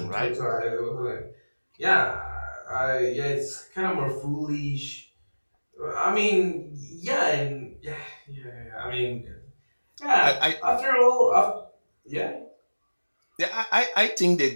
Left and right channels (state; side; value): inverted; both; correlation -1.00